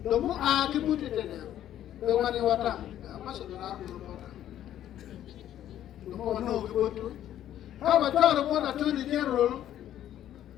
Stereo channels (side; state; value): right; quieter; 11.6 dB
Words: the more I can put it in there, the one you want to must have the more no go to. How about Chope to the general?